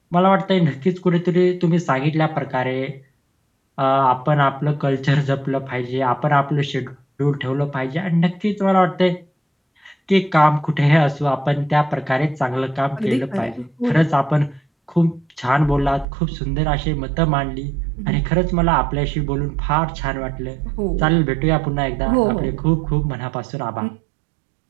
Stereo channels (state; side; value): drops out; left; at 16.1 s